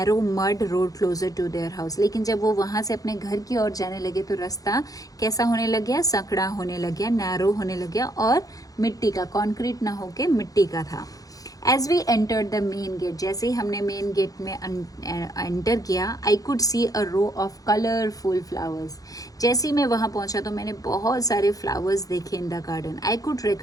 mud road closer to their house. लेकिन जब वो वहाँ से अपने घर की ओर जाने लगे तो रास्ता कैसा होने लग गया? संकड़ा होने लग गया, नैरो होने लग गया और मिट्टी का, कॉन्क्रीट ना होके मिट्टी का था। As we entered the main gate, जैसे ही हमने मेन गेट में एंटर किया, I could see a row of colourful flowers. जैसे ही मैं वहाँ पहुँचा तो मैंने बहुत सारे फ्लावर्स देखे in the garden. I could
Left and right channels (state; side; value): late; right; 0.17 ms